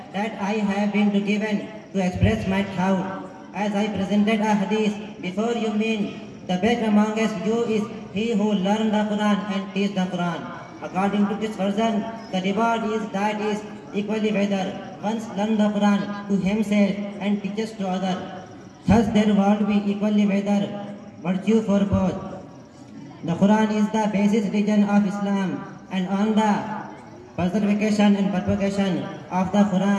that I have been given to express my thought as I presented a hadith before you. Mean the best amongst you is he who learns the Quran and teaches the Quran. According to this version, the reward is equally whether one learns the Quran to himself and teaches to others. Thus there will be equally whether virtue for both. The Quran is the basis religion of Islam, and on the preservation and propagation of the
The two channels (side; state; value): both; identical; correlation 1.00